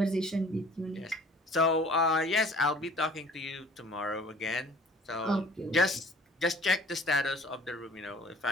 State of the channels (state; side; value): normal; both; correlation 0.50